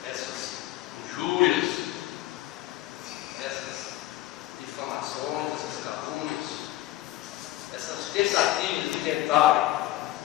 essas injúrias, essas difamações, essas calúnias, essas tentativas de tentarem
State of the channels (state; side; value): quieter; right; 15.6 dB